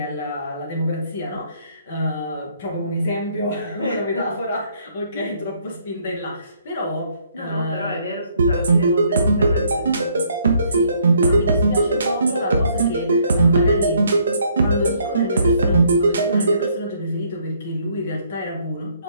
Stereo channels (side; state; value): both; inverted; correlation -0.67